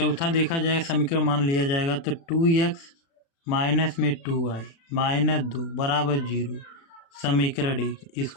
देखा जाएगा, समीकरण मान लिया जाएगा, तो 2x माइनस में 2y -2 बराबर 0, समीकरण 1।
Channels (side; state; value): right; late; 36 ms